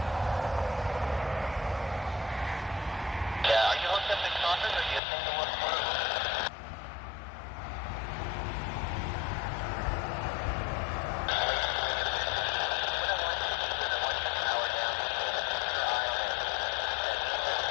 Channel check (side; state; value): right; drops out; at 5.0 s